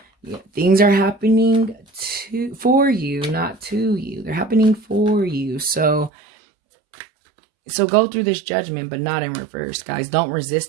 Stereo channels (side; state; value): left; drops out; at 6.1 s